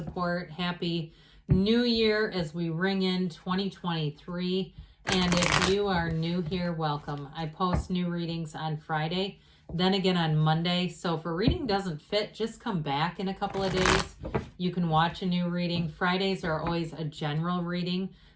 Happy New Year as we ring in 2023. And if you are new here, welcome. I post new readings on Friday, then again on Monday. So if a reading doesn't fit, just come back in a couple of days. You can watch a new reading. Fridays are always a general reading.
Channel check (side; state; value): both; identical; correlation 1.00